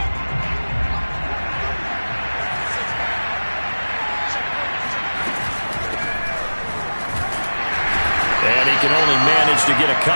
Can only manage to get a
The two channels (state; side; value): inverted; both; correlation -1.00